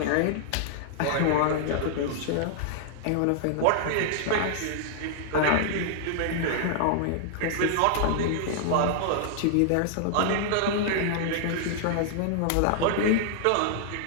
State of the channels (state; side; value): different; both; correlation -0.01